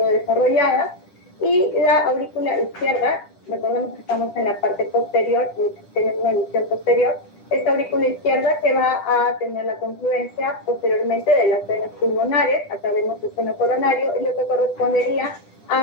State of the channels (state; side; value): late; right; 10 ms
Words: y la aurícula izquierda, recordemos que estamos en la parte posterior, tenemos una visión posterior, esta aurícula izquierda que va a tener la confluencia posteriormente de las venas pulmonares, acá vemos el seno coronario, y lo que correspondería